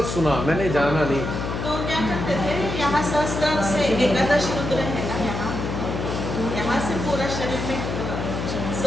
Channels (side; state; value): left; noise; hum, 4 dB below the sound